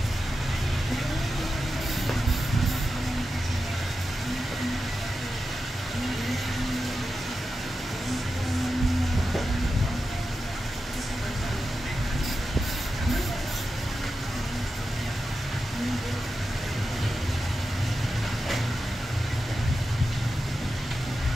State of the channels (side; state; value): both; normal; correlation 0.91